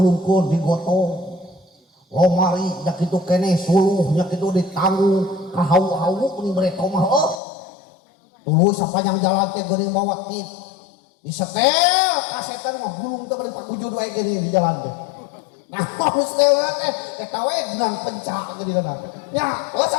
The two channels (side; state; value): right; drops out; at 7.4 s